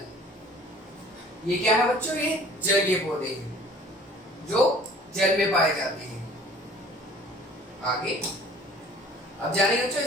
ये क्या है बच्चों, ये जलीय पौधे हैं जो जल में पाए जाते हैं। आगे अब जानेंगे बच्चों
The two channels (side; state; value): both; normal; correlation 0.50